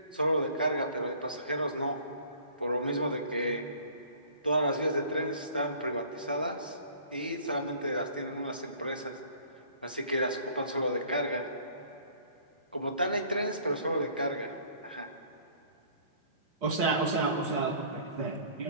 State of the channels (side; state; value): both; inverted; correlation -0.52